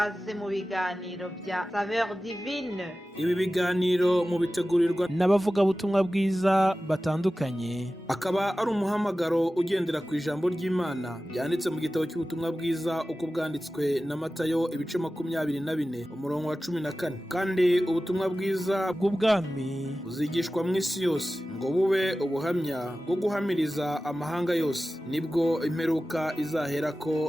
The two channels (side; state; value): both; normal; correlation 0.95